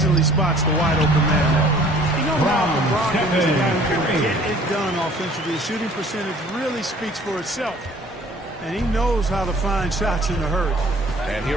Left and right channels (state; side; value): normal; both; correlation 0.53